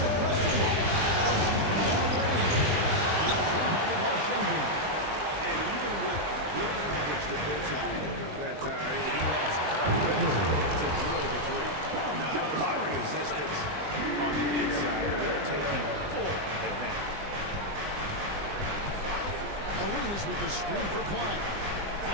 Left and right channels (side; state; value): left; late; 20 ms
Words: question mark. From long range. It's rebounded by Shengun. And even with good coverage defensively, that he has confidence to drill the three. Not a lot of resistance on the inside, and they're taking full advantage. Arenas with the screen for Flag.